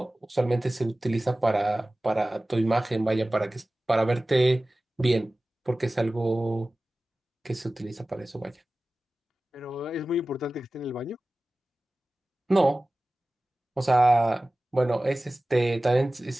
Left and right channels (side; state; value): both; normal; correlation 0.97